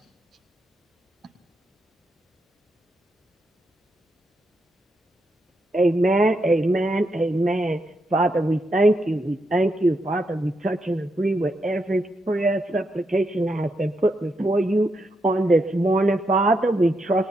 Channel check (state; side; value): normal; both; correlation 0.81